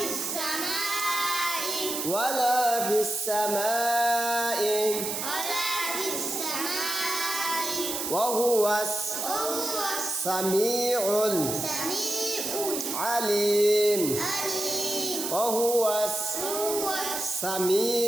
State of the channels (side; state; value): right; noise; hiss, 3 dB below the sound